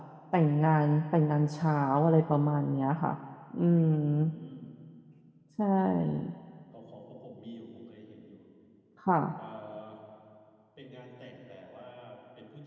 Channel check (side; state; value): both; identical; correlation 1.00